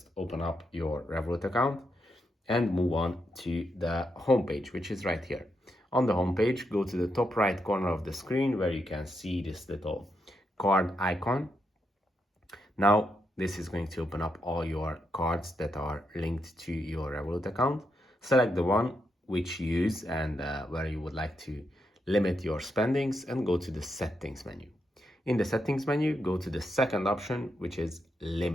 open up your Revolut account and move on to the homepage, which is right here. On the homepage, go to the top right corner of the screen where you can see this little card icon. Now this is going to open up all your cards that are linked to your Revolut account. Select the one which you use and where you would like to limit your spendings, and go to the settings menu. In the settings menu, go to the second option, which is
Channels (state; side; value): normal; both; correlation 0.82